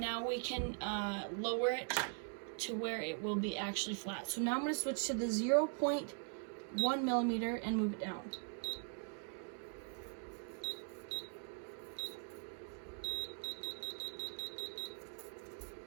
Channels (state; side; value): silent; left; 50 dB below the other